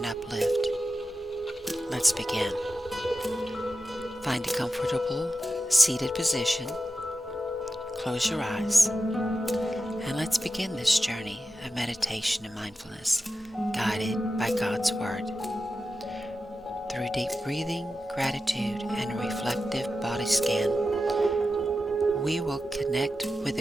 uplift. Let's begin. Find a comfortable, seated position. Close your eyes. And let's begin this journey of meditation and mindfulness, guided by God's Word. Through deep breathing, gratitude, and a reflective body scan, we will connect with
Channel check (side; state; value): both; normal; correlation 0.91